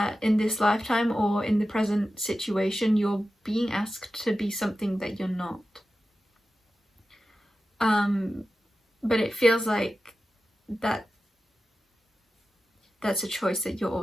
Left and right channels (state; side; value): normal; both; correlation 0.93